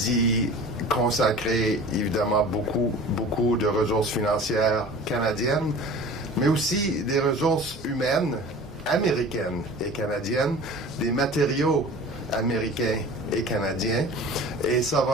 consacrer, évidemment, beaucoup de ressources financières canadiennes, mais aussi des ressources humaines américaines et canadiennes, des matériaux américains et canadiens. Et ça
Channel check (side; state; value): both; normal; correlation 0.40